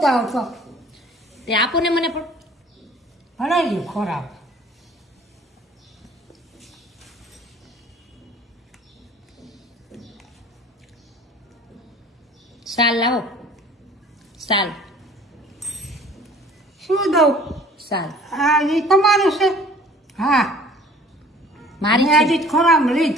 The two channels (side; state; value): both; normal; correlation 0.50